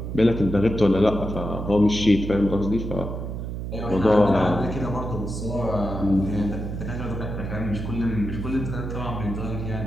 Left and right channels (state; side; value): noise; right; hum, 5 dB below the sound